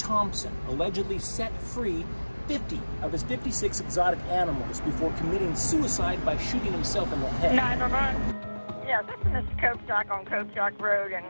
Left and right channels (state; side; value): inverted; both; correlation -1.00